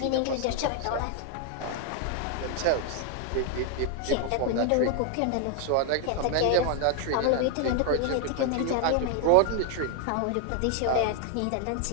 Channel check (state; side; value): different; both; correlation 0.00